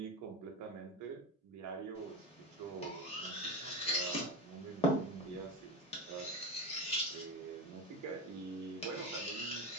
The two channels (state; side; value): normal; both; correlation 0.20